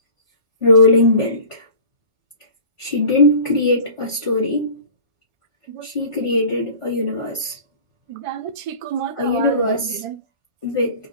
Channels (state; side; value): late; left; 1.5 ms